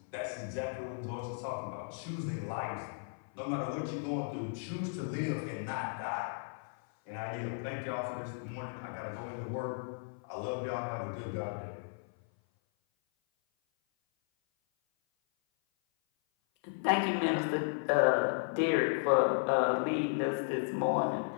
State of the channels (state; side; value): silent; right; 54 dB below the other